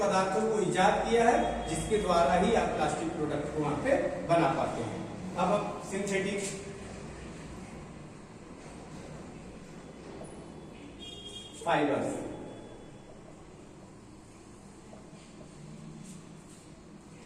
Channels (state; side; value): identical; both; correlation 1.00